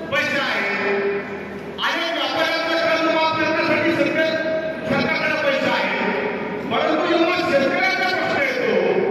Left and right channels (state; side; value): identical; both; correlation 1.00